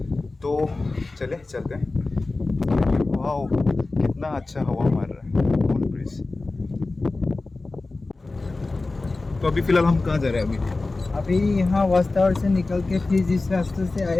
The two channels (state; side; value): quieter; right; 3.4 dB